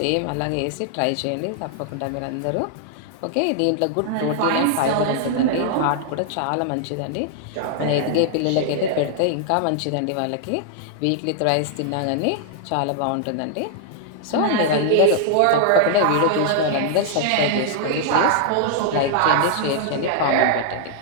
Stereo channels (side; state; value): both; different; correlation -0.01